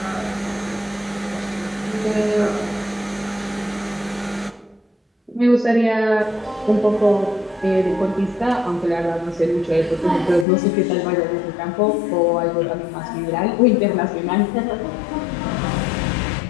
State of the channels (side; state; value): right; drops out; at 10.5 s